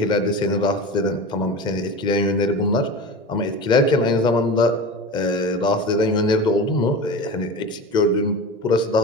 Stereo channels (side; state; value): both; normal; correlation 0.30